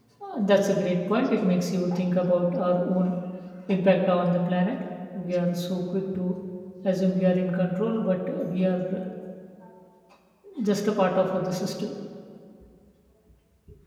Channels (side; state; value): both; identical; correlation 1.00